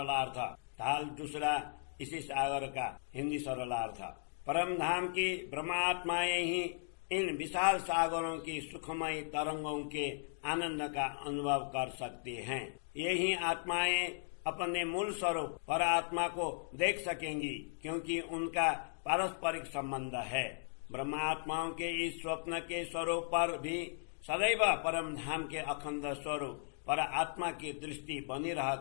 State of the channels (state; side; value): silent; right; digital silence